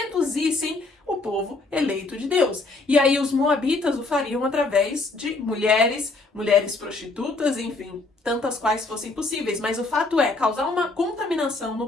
o povo eleito de Deus. E aí os Moabitas o fariam através de mulheres prostitutas, enfim, tantas quais fossem possíveis. Mas o fato é causar uma contaminação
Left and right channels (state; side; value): quieter; right; 3.4 dB